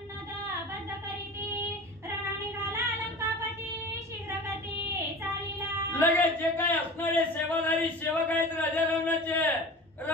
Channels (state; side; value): normal; both; correlation 0.36